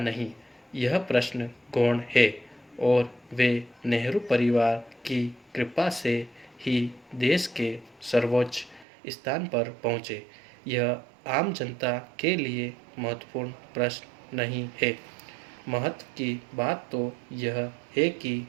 यह प्रश्न गौण है, और वे नेहरू परिवार की कृपा से ही देश के सर्वोच्च स्थान पर पहुँचे। यह आम जनता के लिए महत्वपूर्ण प्रश्न नहीं है। महत्व की बात तो यह है कि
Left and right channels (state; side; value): drops out; left; at 8.8 s